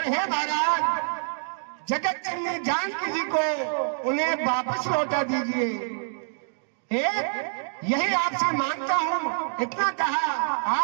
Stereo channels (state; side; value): silent; left; digital silence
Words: हे महाराज, जगत जननी जानकी जी को उन्हें वापस लौटा दीजिए। यही आपसे मांगता हूं, इतना कहा